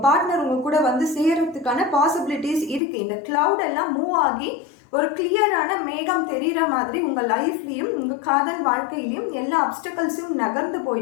பார்ட்னர் உங்க கூட சேர்றதுக்கான பாசிபிலிட்டிஸ் இருக்கு. இந்த கிளவுட் எல்லாம் மூவ் ஆகி ஒரு கிளியரான மேகம் தெரிகிற மாதிரி உங்கள் லைஃப்லையும் உங்கள் காதல் வாழ்க்கையிலையும் எல்லா அப்டக்கல்ஸும் நகர்ந்து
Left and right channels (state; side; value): drops out; right; at 2.8 s